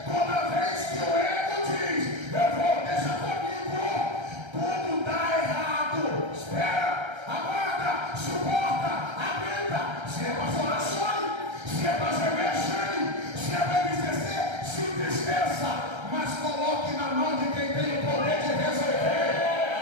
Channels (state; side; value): late; left; 1.3 ms